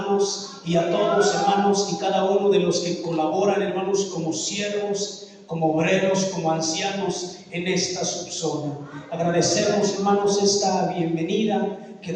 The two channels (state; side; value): identical; both; correlation 1.00